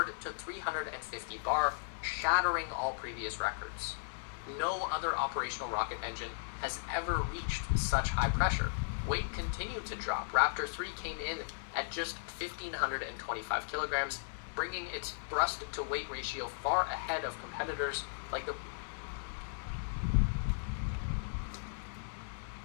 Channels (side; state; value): right; silent; digital silence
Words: to 350 bar, shattering all previous records. No other operational rocket engine has ever reached such high pressure. Weight continued to drop. Raptor 3 came in at just 1,525 kilograms, bringing its thrust to weight ratio far ahead of competitors like the